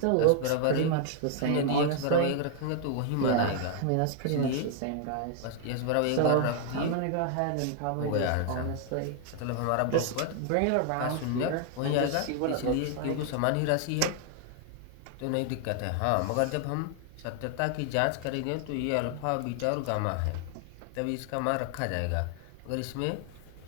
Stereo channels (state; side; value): different; both; correlation 0.00